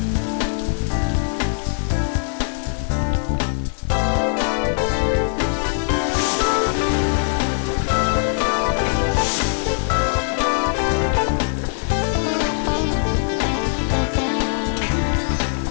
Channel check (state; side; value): silent; right; digital silence